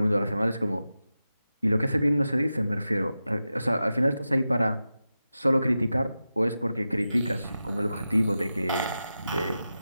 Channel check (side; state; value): both; inverted; correlation -0.92